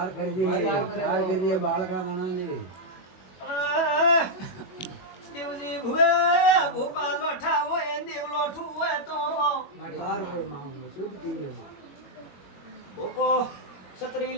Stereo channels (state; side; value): late; right; 21 ms